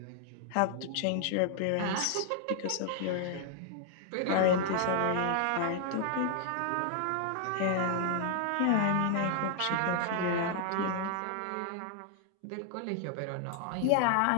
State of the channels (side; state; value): both; different; correlation 0.00